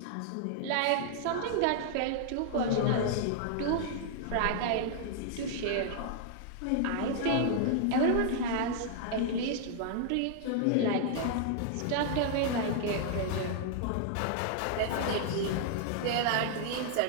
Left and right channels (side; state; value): both; different; correlation -0.01